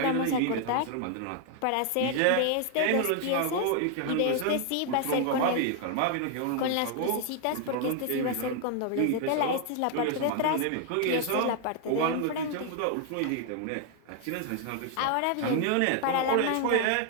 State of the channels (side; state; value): both; different; correlation 0.00